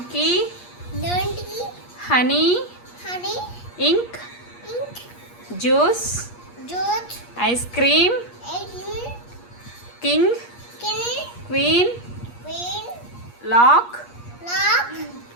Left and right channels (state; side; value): late; right; 8.4 ms